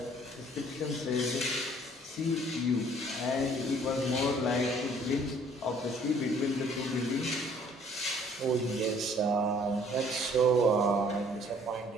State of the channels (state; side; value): normal; both; correlation 0.58